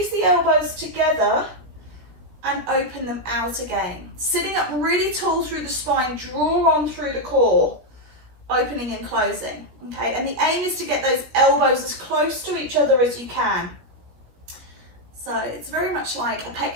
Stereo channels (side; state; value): left; late; 16 ms